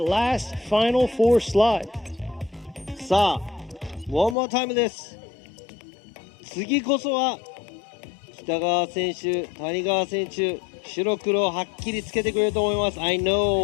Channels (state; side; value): drops out; right; at 4.4 s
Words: last final 4 slot. さあ、one more time です。次こそは北川選手、谷川選手。 白黒はっきりつけてくれると思います。I